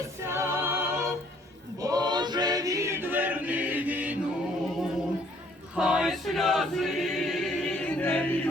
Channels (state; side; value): normal; both; correlation 0.62